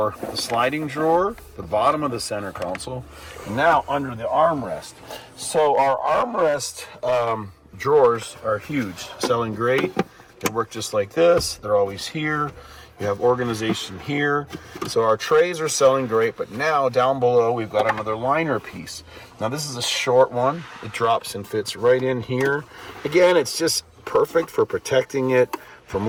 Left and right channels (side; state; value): both; identical; correlation 1.00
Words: the sliding drawer, the bottom of the center console, and now under the armrest. So our armrest drawers are huge, selling great. They work just like this. They're always here. You have organization here. So our trays are selling great, but now down below we've got another liner piece. Now this is a short one. It drops and fits right in here. Again, it's just perfect for protecting it from